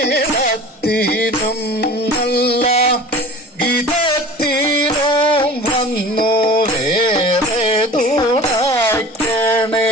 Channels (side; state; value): both; normal; correlation 0.40